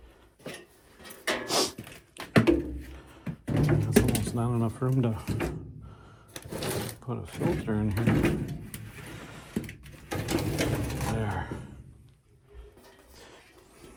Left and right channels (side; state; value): both; identical; correlation 1.00